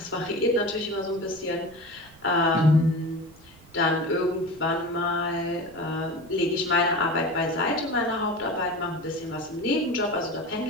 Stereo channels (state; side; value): noise; right; rumble, 25 dB below the sound